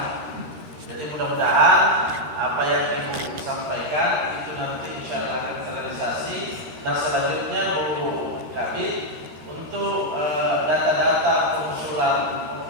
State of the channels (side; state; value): left; late; 13 ms